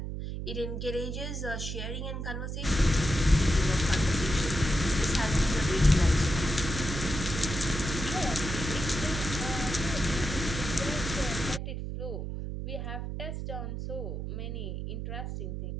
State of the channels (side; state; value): right; noise; hum, 5 dB below the sound